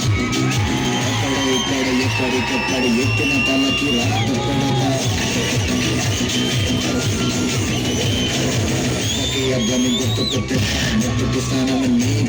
ఎక్కడికెక్కడ ఎత్తిన తలకి రాత అబ్బాయి గుర్తుకొట్టే ముట్టుకి స్నానం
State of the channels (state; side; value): identical; both; correlation 1.00